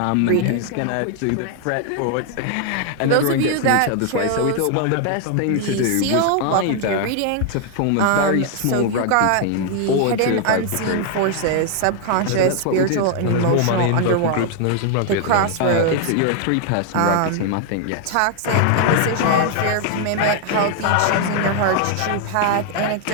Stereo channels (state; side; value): different; both; correlation 0.00